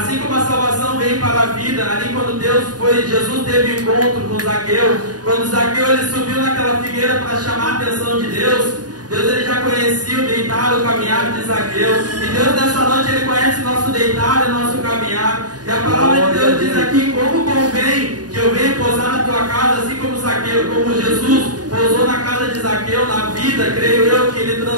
como a salvação vem para a vida, ali quando Jesus teve encontro com Zaqueu, quando Zaqueu ele subiu naquela figueira para chamar a atenção de Deus ele já conhecia o deitar, o caminhar de Zaqueu, e Deus nessa noite ele conhece o nosso deitar e o nosso caminhar, e a palavra de Deus diz aqui: como convém que eu venha pousar na tua casa, assim como Zaqueu, como Jesus pousou na casa de Zaqueu, na vida, creio eu, que ele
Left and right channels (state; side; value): late; left; 0.69 ms